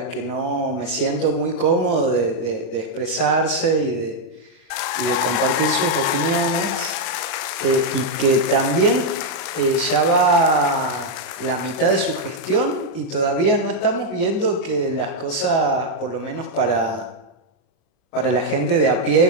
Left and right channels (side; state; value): right; late; 37 ms